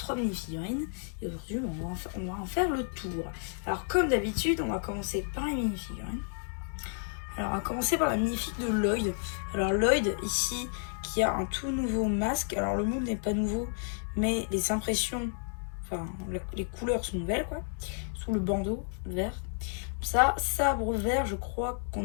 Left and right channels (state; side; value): silent; right; 57 dB below the other